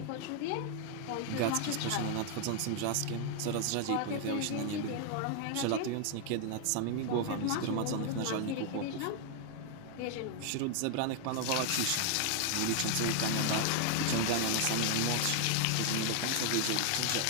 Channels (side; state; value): both; different; correlation 0.00